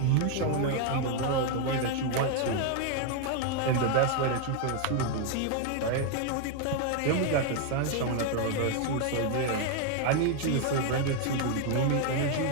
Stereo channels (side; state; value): both; different; correlation 0.01